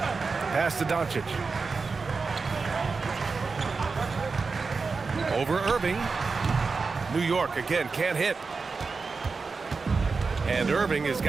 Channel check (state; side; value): quieter; left; 4.5 dB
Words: to Doncic. Over Irving. New York again can't hit. And Irving has